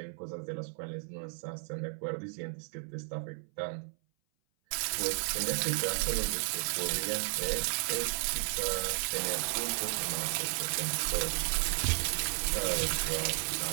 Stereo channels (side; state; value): left; silent; 55 dB below the other